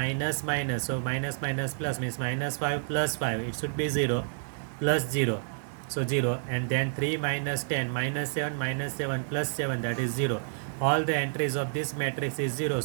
minus, so minus minus plus means minus 5 plus 5, it should be 0 plus 0, so 0. And then 3 minus 10 minus 7 minus 7 plus 7, that is 0. All the entries of this matrix is 0,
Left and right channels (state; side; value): silent; left; digital silence